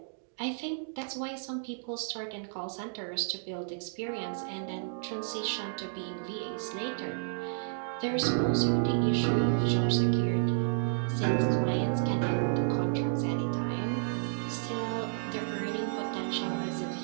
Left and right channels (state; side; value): silent; left; digital silence